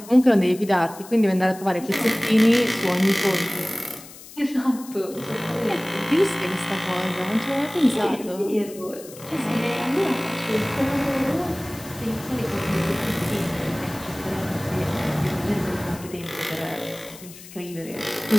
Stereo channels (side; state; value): left; noise; hiss, 17 dB below the sound